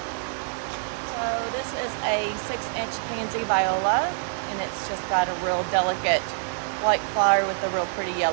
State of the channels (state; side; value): silent; left; 61 dB below the other